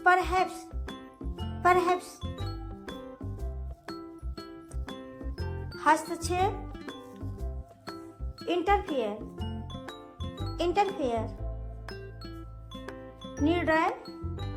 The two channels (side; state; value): both; identical; correlation 1.00